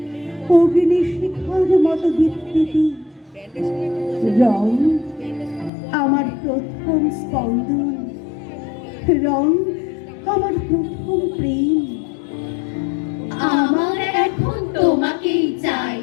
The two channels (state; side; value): drops out; right; at 5.7 s